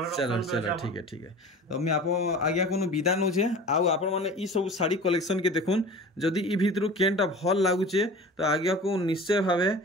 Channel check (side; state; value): both; normal; correlation 0.38